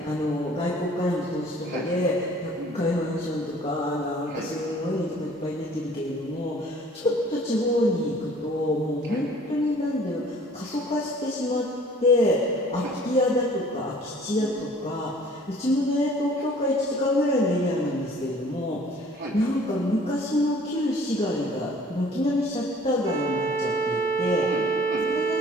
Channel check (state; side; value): normal; both; correlation 0.52